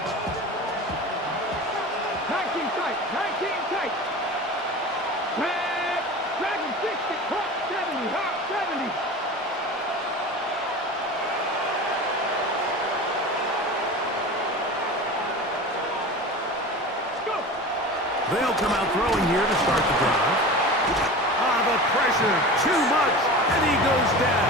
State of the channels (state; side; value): normal; both; correlation 0.33